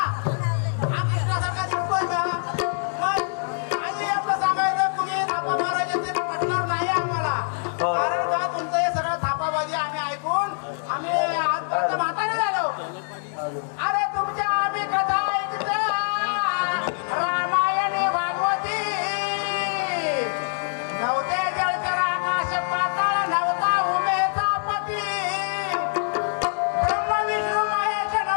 कृष्णासारखा दिसतोय का. मग काही आपलं सांगायचं कुणी थापा मारायचे ते पटणार नाही आम्हाला. कारण का तुमचं हे सगळं थापाबाजी आम्ही ऐकून आम्ही आजपर्यंत म्हातारे झालो. अरे तुमच्या आम्ही कथा ऐकतो रामायणी भागवती. नव्हते जळकर आकाश पाताळ, नव्हता उमेचा पती. ब्रह्म विष्णू महेश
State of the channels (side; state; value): right; silent; 62 dB below the other